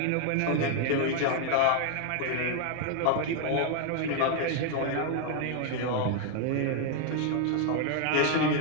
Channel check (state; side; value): different; both; correlation 0.00